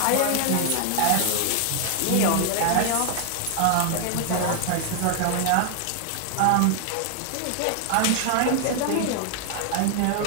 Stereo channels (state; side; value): different; both; correlation 0.00